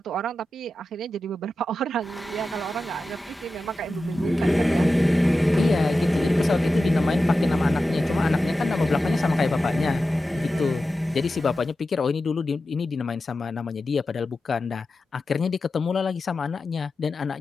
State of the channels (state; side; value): normal; both; correlation 0.93